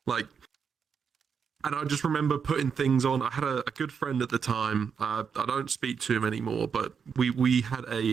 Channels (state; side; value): quieter; left; 6.5 dB